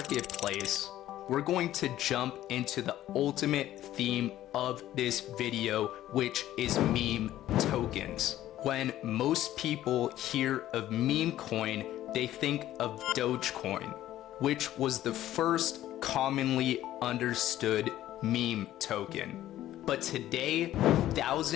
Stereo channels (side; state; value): right; quieter; 13.5 dB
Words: we're going to jump into the ultimate theme of this video, which is meme tokens. When most people hear of meme coin, they think of Dogecoin, which was the first commonly understood meme token. But today,